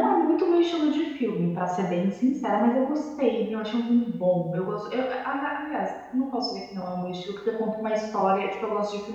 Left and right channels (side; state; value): both; identical; correlation 1.00